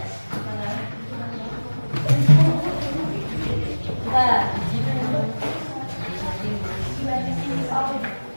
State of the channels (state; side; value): inverted; both; correlation -1.00